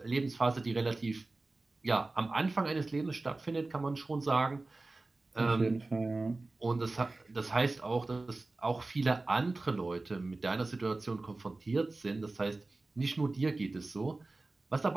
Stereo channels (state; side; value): quieter; left; 3.2 dB